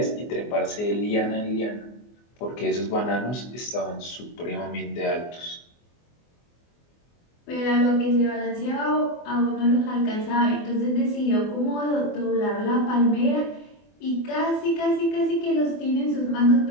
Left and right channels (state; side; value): late; right; 24 ms